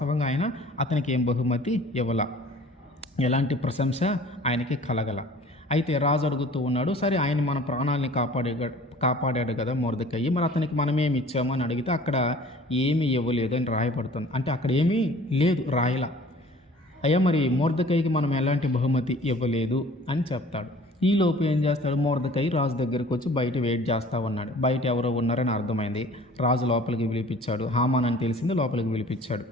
అతనికి ఏం బహుమతి ఇవ్వాల, ఎలాంటి ప్రశంస ఆయనకి కలగల. అయితే రాజు అడుగుతూ ఉన్నాడు, సరే ఆయన మన ప్రాణాలని కాపాడాడు కదా మొర్దెకై, మరి అతనికి మనమేమి ఇచ్చాము అని అడిగితే అక్కడ ఏమీ ఇవ్వలేదు అని రాయబడుతుంది. అంటే అక్కడ ఏమీ లేదు, రాయలా. అయ్యా మరి మొర్దెకైకి మనం ఎలాంటి బహుమతి ఇవ్వలేదు అని చెప్తాడు. ఈలోపు ఏం చేస్తాడు, మొర్దెకై రాజు దగ్గరికి వచ్చి బయట వెయిట్ చేస్తూ ఉన్నాడు. బయట ఎవరో ఉన్నారని అర్థమైంది, రాజు లోపలికి పిలిపించాడు. హామాన్ అని తెలిసింది, లోపలికి పిలిపించాడు.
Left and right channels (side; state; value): both; normal; correlation 0.49